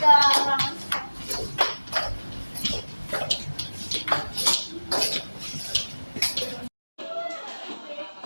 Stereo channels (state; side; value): inverted; both; correlation -1.00